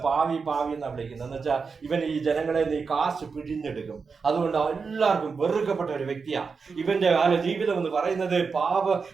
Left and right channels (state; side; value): quieter; left; 5.1 dB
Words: പാവി പാവി എന്നാ വിളിക്കുന്നത്. എന്ന് വെച്ചാൽ ഇവൻ ഈ ജനങ്ങളെ നീ കാശ് പിഴിഞ്ഞെടുക്കും. അതുകൊണ്ട് എല്ലാവർക്കും വെറുക്കപ്പെട്ട ഒരു വ്യക്തിയാ ഇവന്റെ ജീവിതം എന്ന് പറയുന്നത്.